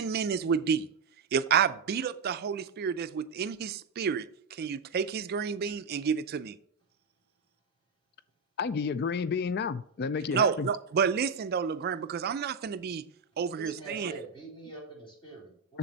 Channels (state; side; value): quieter; left; 4.4 dB